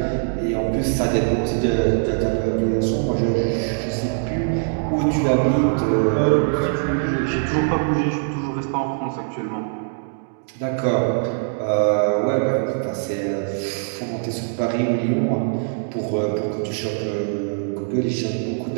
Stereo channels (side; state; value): left; silent; digital silence